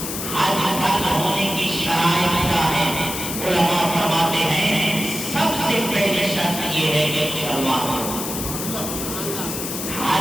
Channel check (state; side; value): noise; left; hiss, 5 dB below the sound